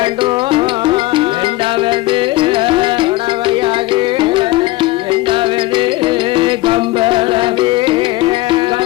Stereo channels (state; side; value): quieter; right; 18.7 dB